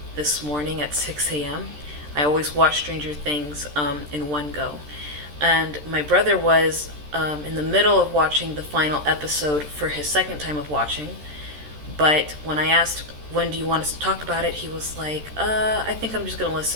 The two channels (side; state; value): left; late; 13 ms